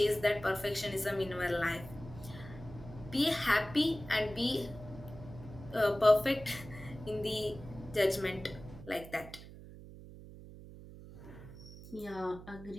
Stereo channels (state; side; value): noise; right; hum, 15 dB below the sound